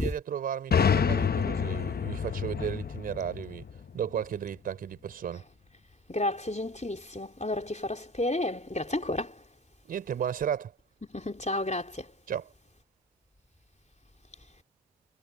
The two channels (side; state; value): both; normal; correlation 0.41